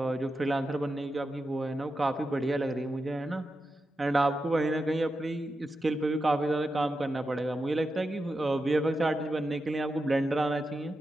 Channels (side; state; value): both; normal; correlation 0.89